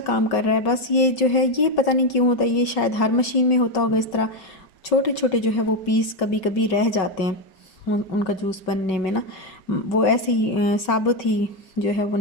काम कर रहा है। बस ये जो है ये पता नहीं क्यों होता है, ये शायद हर मशीन में होता होगा इस तरह, छोटे छोटे जो है वो पीस कभी कभी रह जाते हैं उनका जूस बनने में ना, वो ऐसे ही साबुत ही जो है वो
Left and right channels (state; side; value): late; right; 5.3 ms